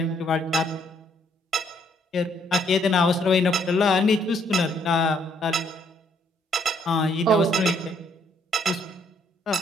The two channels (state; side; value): normal; both; correlation 0.69